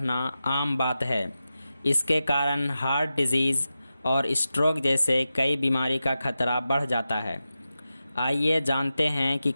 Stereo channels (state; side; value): inverted; both; correlation -0.92